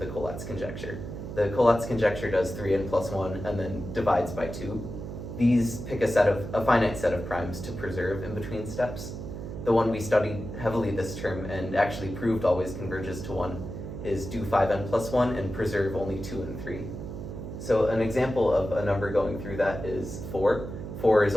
Collatz conjecture. The Collatz conjecture does 3n plus 1 and then divides by 2. These pick a finite set of primes to preserve in between steps. The one we studied heavily this term and actually proved always converges to 1 is do 5n plus 1 and preserve only 2 and 3. So an example of a number going through that is 4. 4 is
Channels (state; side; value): noise; right; hum, 8 dB below the sound